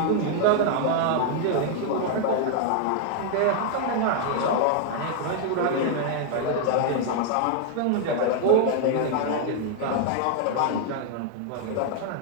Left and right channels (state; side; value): different; both; correlation 0.00